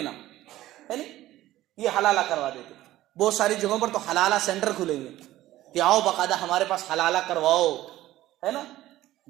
ہے نہیں. یہ حلالہ کروا دیتے. بہت ساری جگہوں پر تو حلالہ سینٹر کھلے ہوئے کہ آؤ باقاعدہ ہمارے پاس حلالہ کرواؤ، ہے نا.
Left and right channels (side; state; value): left; quieter; 15.2 dB